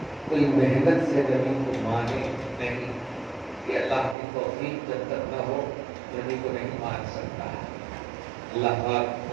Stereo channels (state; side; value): drops out; left; at 4.2 s